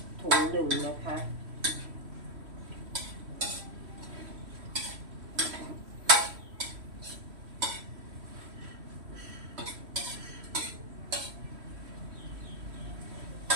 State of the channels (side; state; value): left; late; 3.1 ms